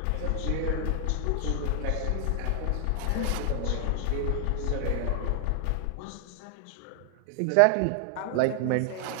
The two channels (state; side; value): different; both; correlation 0.00